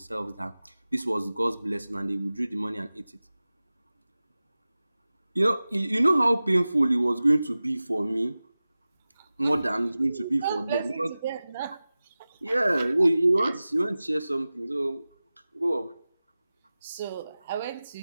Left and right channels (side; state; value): both; inverted; correlation -0.96